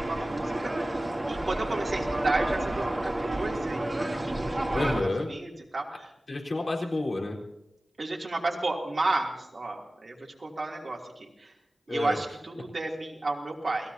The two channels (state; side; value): normal; both; correlation 0.97